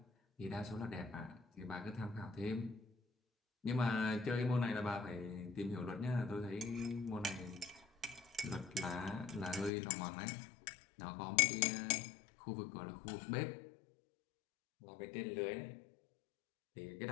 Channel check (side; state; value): right; drops out; at 9.7 s